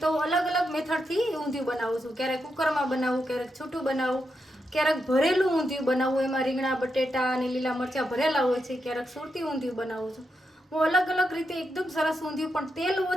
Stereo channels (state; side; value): normal; both; correlation 0.84